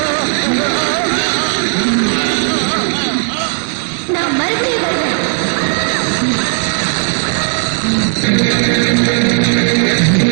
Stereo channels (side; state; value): left; silent; 71 dB below the other